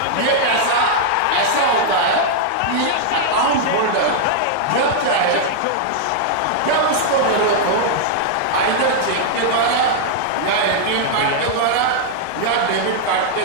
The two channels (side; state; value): both; different; correlation -0.01